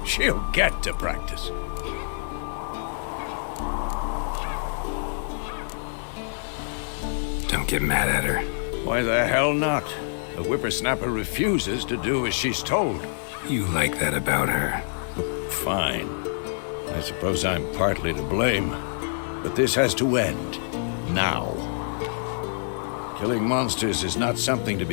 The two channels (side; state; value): right; silent; 61 dB below the other